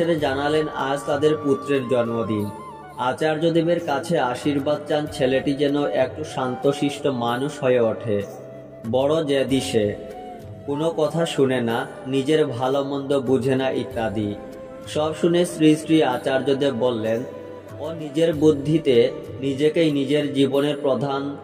জানালেন আজ তাদের পুত্রের জন্মদিন। আচার্যদেবের কাছে আশীর্বাদ চান ছেলেটি যেন একটু শান্তশিষ্ট মানুষ হয়ে ওঠে। বড় জেদি সে, কোনো কথা শুনে না, নিজের ভালো মন্দ বুঝে না ইত্যাদি। সব শুনে শ্রী শ্রী আচার্যদেব বললেন, ও নিজের বুদ্ধিতে নিজেকেই নিজের জীবনের প্রধান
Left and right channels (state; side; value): identical; both; correlation 1.00